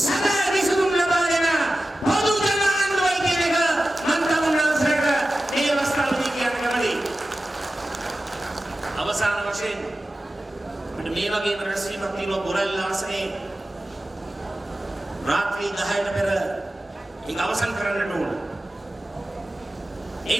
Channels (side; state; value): both; normal; correlation 0.94